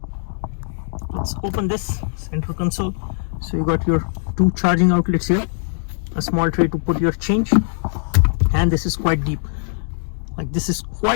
Let's open this center console. So you got your 2 charging outlets here, a small tray to put your change, and this is quite deep. Like this is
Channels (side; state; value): right; silent; digital silence